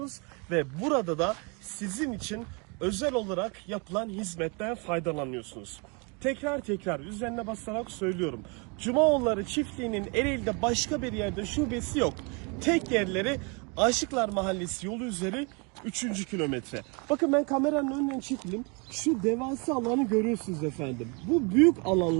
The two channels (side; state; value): left; quieter; 32.5 dB